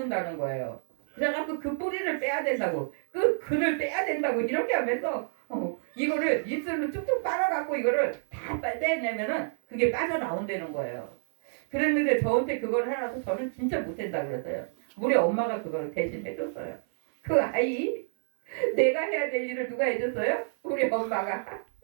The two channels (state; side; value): silent; left; 59 dB below the other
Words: 거예요. 그래갖고 그 뿌리를 빼야 된다고 그 글을 빼야 된다고 이렇게 하면서 이거를 입술로 툭툭 빨아갖고 이거를 다 빼내면은 그게 빠져나온다는 거예요. 그랬는데 저한테 그걸 해놔서 저는 진짜 못한다 그랬어요. 우리 엄마가 그걸 대신 해줬어요. 그 아이 내가 해야 될 일을 누가 해줬어요? 우리 엄마가.